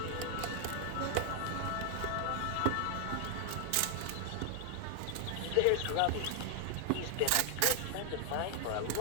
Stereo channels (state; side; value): different; both; correlation 0.00